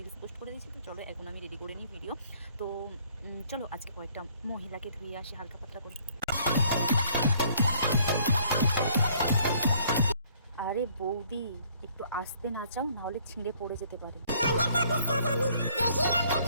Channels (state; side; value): inverted; both; correlation -0.61